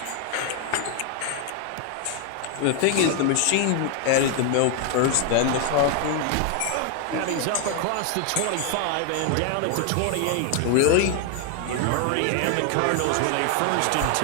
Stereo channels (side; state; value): both; different; correlation 0.01